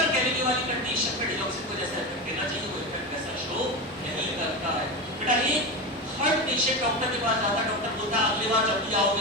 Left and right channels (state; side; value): normal; both; correlation 0.20